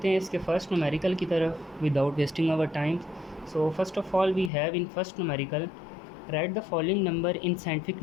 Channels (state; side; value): drops out; right; at 4.5 s